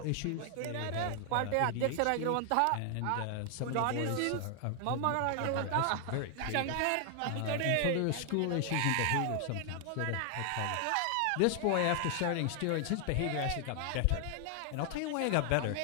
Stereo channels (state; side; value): different; both; correlation 0.00